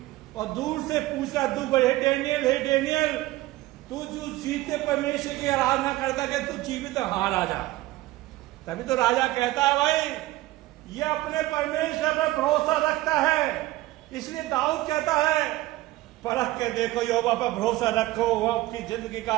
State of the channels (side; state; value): left; quieter; 17.6 dB